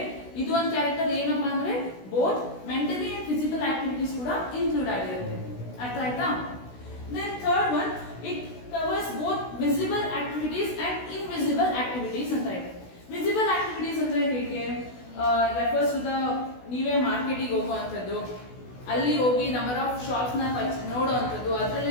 ಇದು ಒಂದು ಕ್ಯಾರೆಕ್ಟರ್. ಏನಪ್ಪಾ ಅಂದ್ರೆ both mentally and physical activities ಕೂಡ ಇನ್ಕ್ಲೂಡ್ ಆಗಿರುತ್ತೆ. ಅರ್ಥ ಆಯ್ತಾ? Then third one, it covers both visible activities and invisible activities ಅಂತ ಇದೆ. ವಿಸಿಬಲ್ ಆಕ್ಟಿವಿಟೀಸ್ ಅಂದ್ರೆ ಹೇಗೆ? ರೆಫರ್ಸ್ ಟು ದ ನೀವೇ ಮಾರ್ಕೆಟಿಗೆ ಹೋಗುವಂಥದ್ದು, ಅಲ್ಲಿ ಹೋಗಿ ನಂಬರ್ ಆಫ್ ಶಾಪ್ಸ್ ನ ನೋಡುವಂಥದ್ದು,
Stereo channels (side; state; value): right; late; 16 ms